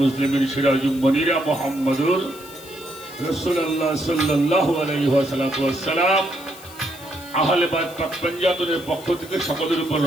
মুসলিমিন সিরাজুল মুনিরা মুহাম্মদুর রাসূলুল্লাহ সাল্লাল্লাহু আলাইহি ওয়াসাল্লাম আহলে বাইত পাক পঞ্জাবের পক্ষ থেকে সকলের উপর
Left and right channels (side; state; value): left; noise; hiss, 19 dB below the sound